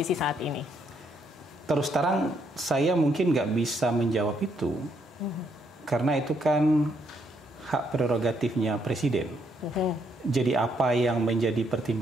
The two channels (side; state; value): both; normal; correlation 0.73